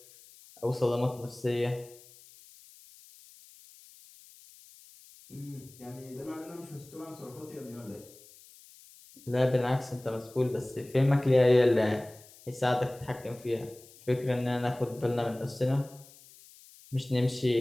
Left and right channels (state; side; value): noise; left; hiss, 23 dB below the sound